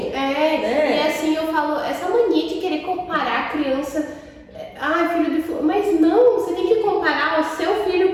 Né? E assim eu falo, essa mania de querer comparar a criança, filho de... Mas não, você tem que comparar o seu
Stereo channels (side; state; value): both; identical; correlation 1.00